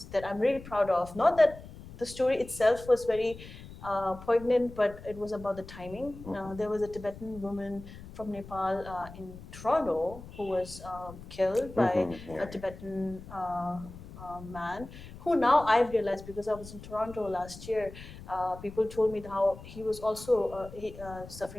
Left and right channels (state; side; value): noise; left; rumble, 15 dB below the sound